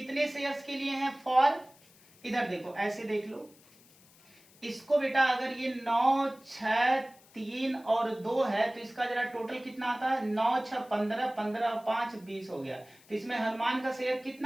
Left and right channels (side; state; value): left; noise; hiss, 27 dB below the sound